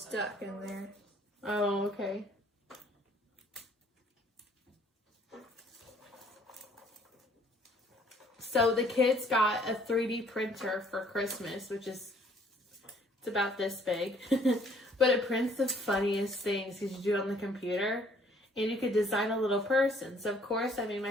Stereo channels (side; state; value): both; normal; correlation 0.60